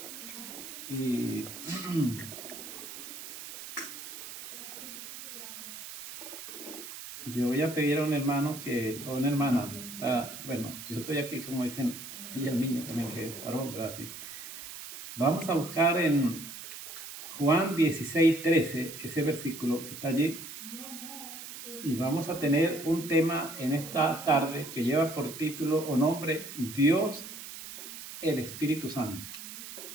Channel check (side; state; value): right; noise; hiss, 11 dB below the sound